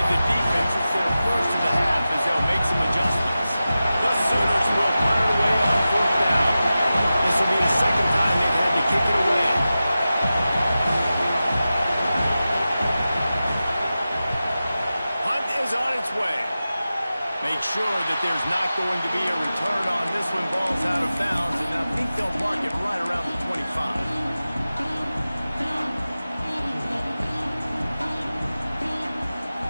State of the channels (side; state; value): both; inverted; correlation -0.94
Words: the defense. It's their first of the half as they'll make some adjustments. The Sooners will punt it away on 4th down. This will be the 2nd time they've had to kick it away. Punt is on its way. Make sure that there's not going to be a return on this one. Ball's out of bounds, and I think they'll mark it right around the 25.